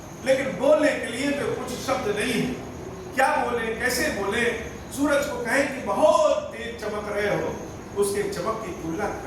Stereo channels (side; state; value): both; identical; correlation 1.00